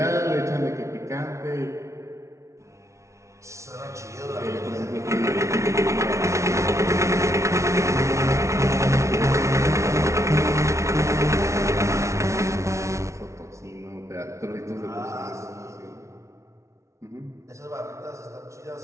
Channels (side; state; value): left; late; 0.14 ms